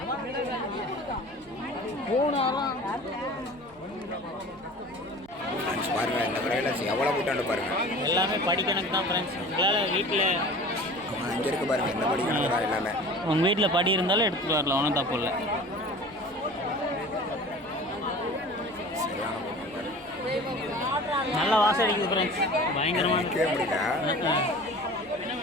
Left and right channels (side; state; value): right; noise; hum, 26 dB below the sound